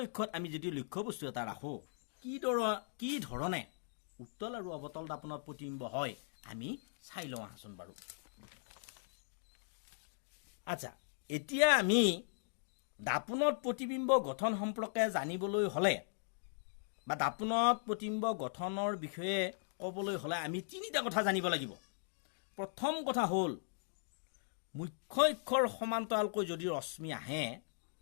অক্ষত আমি যদি লক্ষ্য বস্তু এটা ৰাখো কি ধৰণে উত্তল আৰু অবতল দাপনত প্ৰতিবিম্ব হয় আমি চাই লওঁ আহাচোন বাৰু আচ্ছা এতিয়া আমি দাপনত প্ৰতিবিম্ব গঠন সম্পৰ্কে জানিবলৈ হলে বা দাপনত প্ৰতিবিম্ব গঠনৰ বিষয়ে ক'বলৈ হলে আমি তিনিটা কথা জানিব লাগিব প্ৰথম কথা হ'ল মুখ্য অক্ষৰ সমান্তৰালকৈ যদি ৰশ্মি আহে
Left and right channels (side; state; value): right; silent; digital silence